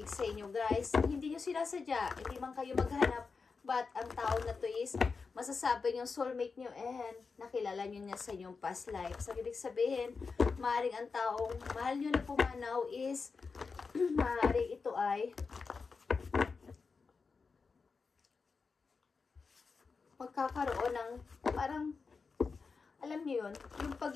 sa inyo, guys. Hindi nyo sinasadya, hindi man kayo maghanap, But ang tao na to is masasabi yung soulmate nyo and nakilala nyo niya sa inyong past life. So, ibig sabihin, maaaring ang taong mahal nyo na pumanaw is maaaring ito ay magkakaroon ng parang, alam niyo yun, yung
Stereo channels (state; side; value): quieter; right; 4.8 dB